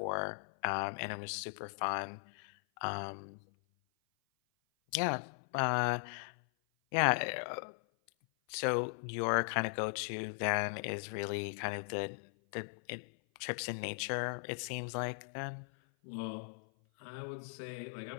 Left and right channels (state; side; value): silent; right; 52 dB below the other